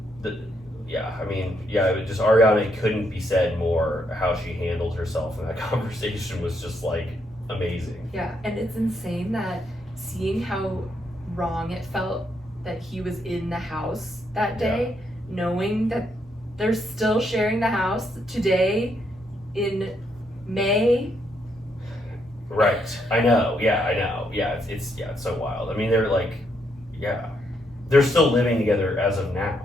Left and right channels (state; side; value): normal; both; correlation 0.76